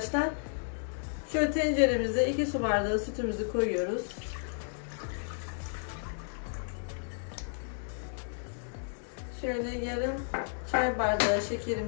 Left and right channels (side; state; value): right; silent; digital silence